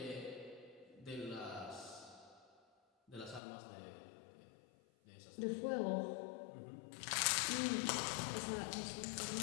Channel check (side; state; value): right; drops out; at 3.4 s